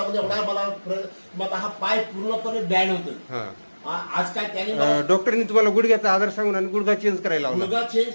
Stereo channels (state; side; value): inverted; both; correlation -1.00